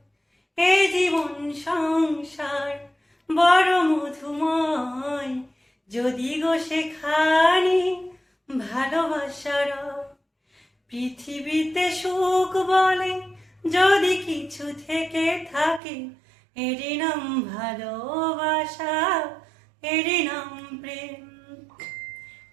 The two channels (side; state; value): left; drops out; at 15.8 s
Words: এ জীবন সংসার বড় মধুময়, যদি গো সেখানে ভালোবাসা রয়। পৃথিবীতে সুখ বলে যদি কিছু থেকে থাকে, এর নাম ভালোবাসা, এর নাম প্রেম।